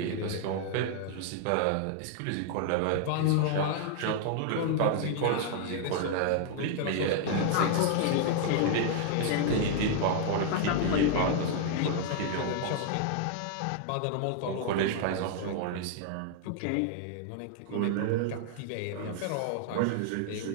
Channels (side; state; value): both; different; correlation 0.00